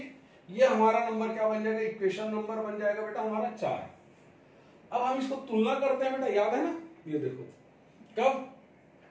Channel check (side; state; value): both; identical; correlation 1.00